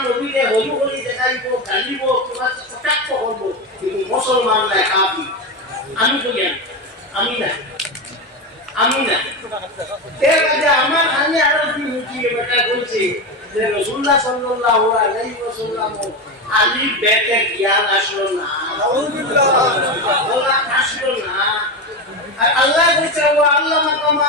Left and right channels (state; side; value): normal; both; correlation 0.17